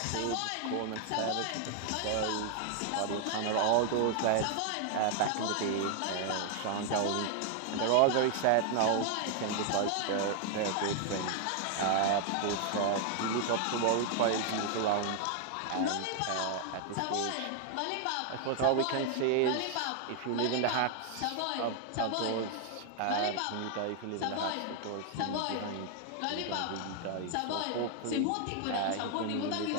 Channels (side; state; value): both; different; correlation 0.00